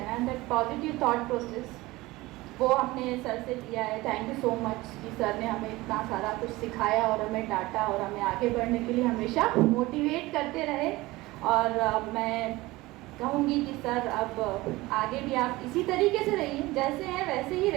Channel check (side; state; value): left; quieter; 20.0 dB